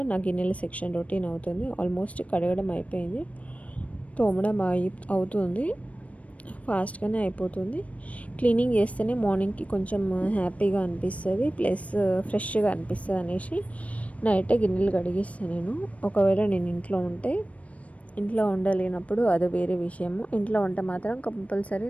నా గిన్నెల సెక్షన్ రొటీన్ అవుతుంది. ఆల్మోస్ట్ కడగడం అయిపోయింది, తోమడం అవుతుంది. ఫాస్ట్గానే అయిపోతుంది. క్లీనింగ్ చేస్తేనే మార్నింగ్కి కొంచెం హ్యాపీగా అనిపిస్తుంది, ప్లస్ ఫ్రెష్గా అనిపిస్తుంది అనేసి నైటే గిన్నెలు కడిగిస్తాను నేను. ఒకవేళ నేను ఇంట్లో ఉంటే, ఇంట్లో ఉండలేనప్పుడు అది వేరే విషయము. ఇంట్లో ఉంటే మాత్రం కంపల్సరీ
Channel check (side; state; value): right; late; 0.066 ms